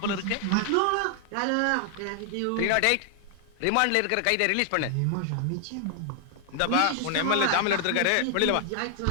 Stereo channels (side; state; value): both; different; correlation 0.00